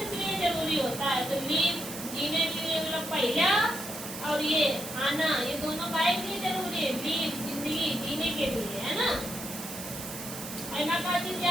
लिए जरूरी होता है तो लीव जीने के लिए मतलब पहला और ये आना ये दोनों काहे के लिए जरूरी है लीव जिंदगी जीने के लिए है ना ऐना का चीज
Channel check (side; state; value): right; noise; hiss, 9 dB below the sound